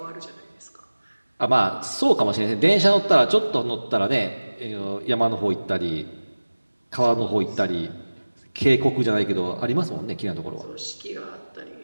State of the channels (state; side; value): inverted; both; correlation -1.00